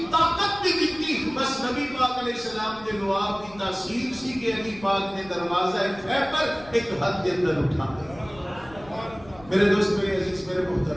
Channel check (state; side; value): noise; left; rumble, 21 dB below the sound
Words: طاقت بھی دتی. بس نبی پاک علیہ السلام دے لعاب کی تاثیر سی کہ علی پاک نے دروازہ خیبر ایک حد کے اندر اٹھا دیا. میرے دوست، میرے عزیز، میرے